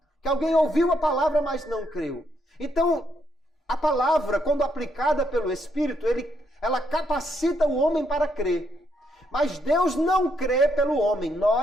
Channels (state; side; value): normal; both; correlation 0.75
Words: Que alguém ouviu a palavra, mas não creu. Então, a palavra, quando aplicada pelo Espírito, ela capacita o homem para crer. Mas Deus não crê pelo homem.